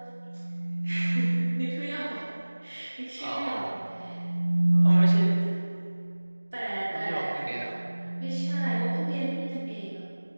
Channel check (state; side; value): inverted; both; correlation -1.00